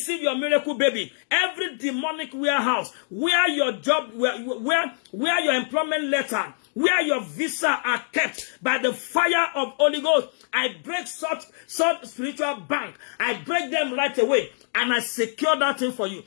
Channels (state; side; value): silent; right; digital silence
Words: your miracle baby. Every demonic warehouse where your job, where your employment letter, where your visa are kept, by the fire of Holy Ghost, I break such spiritual bank. I break them right away, and I secure that thing for you